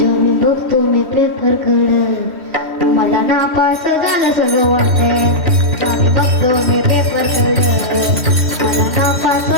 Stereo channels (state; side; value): late; left; 3.2 ms